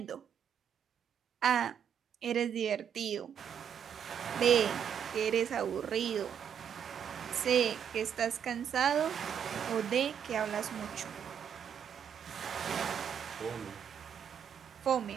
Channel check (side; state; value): left; quieter; 8.3 dB